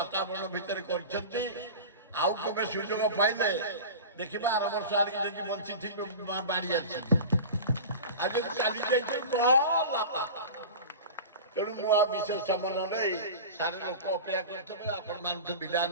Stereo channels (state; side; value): inverted; both; correlation -0.32